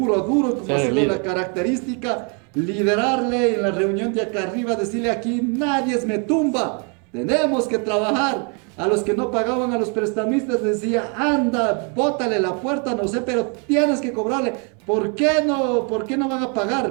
duro, como ha sido la característica, liderarle en la reunión de acá arriba, decirle aquí nadie me tumba, tenemos que trabajar. A los que no pagaban, a los prestamistas, decía, anda, bótale la puerta, no sé, pero tienes que cobrarle. ¿Por qué no van a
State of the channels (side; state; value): left; quieter; 36.8 dB